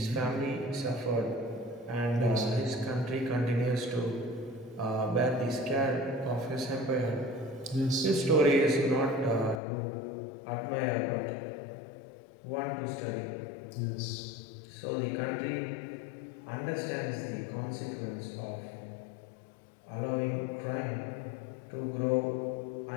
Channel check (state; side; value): drops out; right; at 9.6 s